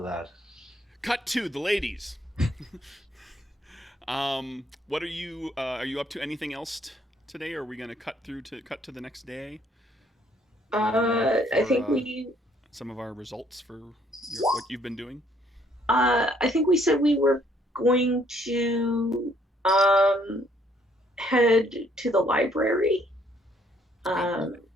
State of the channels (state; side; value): normal; both; correlation 0.66